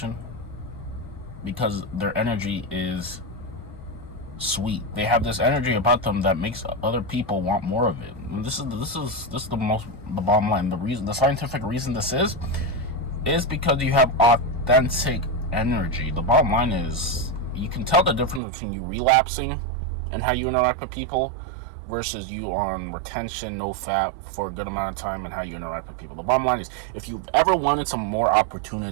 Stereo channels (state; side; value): drops out; left; at 18.4 s